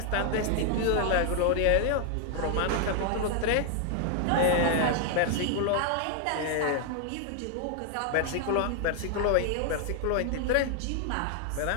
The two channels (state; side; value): different; both; correlation 0.00